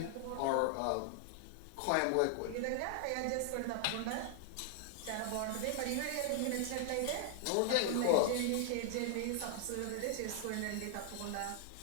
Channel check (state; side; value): different; both; correlation -0.01